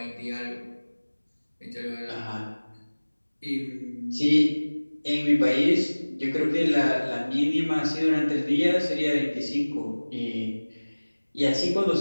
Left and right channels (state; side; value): inverted; both; correlation -1.00